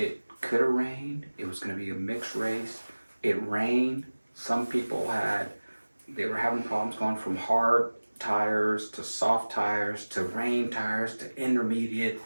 could have rained. It was going to be a mixed race. It rained. Some people they were having problems going from hard tires to soft tires to rain tires to intermediate.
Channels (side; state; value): both; inverted; correlation -1.00